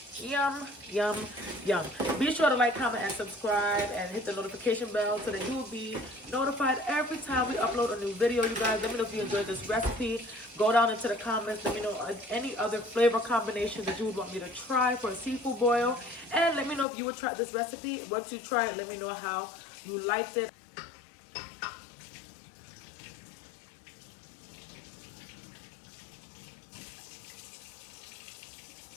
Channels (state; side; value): drops out; right; at 16.9 s